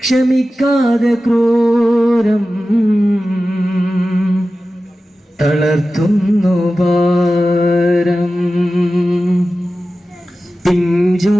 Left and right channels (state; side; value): normal; both; correlation 0.94